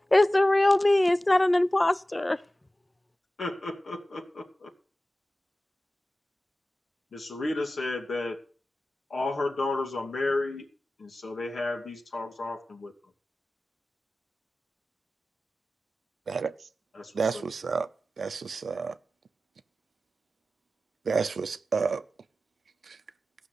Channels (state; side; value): normal; both; correlation 0.95